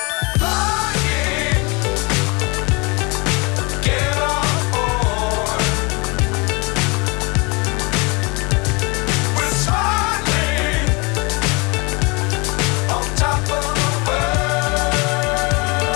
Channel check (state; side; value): quieter; right; 28.4 dB